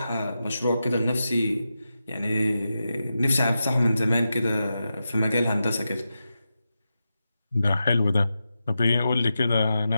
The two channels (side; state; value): both; inverted; correlation -0.90